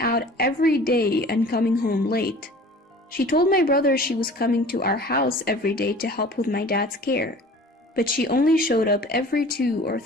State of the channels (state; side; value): normal; both; correlation 0.45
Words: every day and coming home late. She told my brother she was coming to our house every day to help with my dad's care, but she only showed up every 2 or